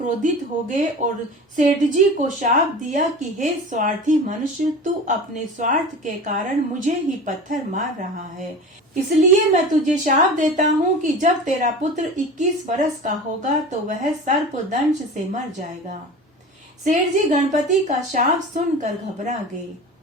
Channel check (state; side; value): normal; both; correlation 0.34